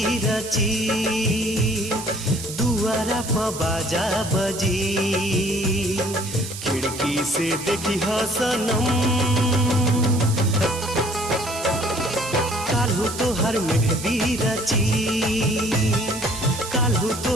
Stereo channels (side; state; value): right; noise; hiss, 10 dB below the sound